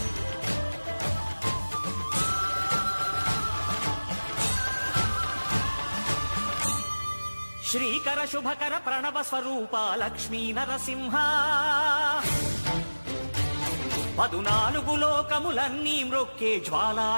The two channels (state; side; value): inverted; both; correlation -1.00